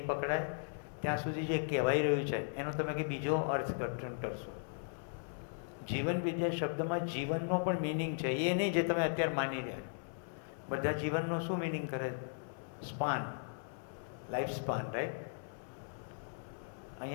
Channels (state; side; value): silent; right; 53 dB below the other